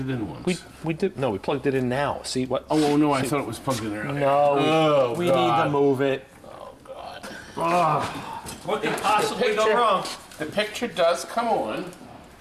in once. We did. No, we plugged it in now. See what? Oh no, I thought it was plugged in earlier. No, we need to move it. Oh God. What could possibly go wrong? The picture does come on.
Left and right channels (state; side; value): identical; both; correlation 1.00